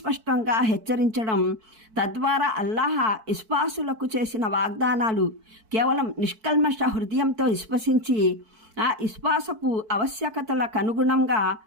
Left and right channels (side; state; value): left; late; 4.5 ms